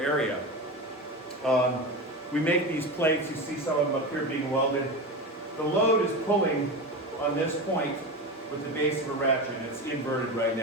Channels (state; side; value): normal; both; correlation 0.23